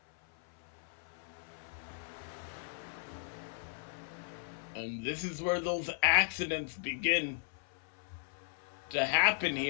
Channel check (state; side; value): silent; right; 53 dB below the other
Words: And this is where those accidents begin to happen